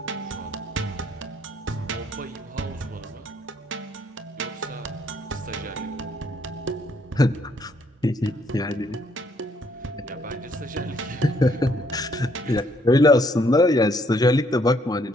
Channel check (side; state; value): both; normal; correlation 0.68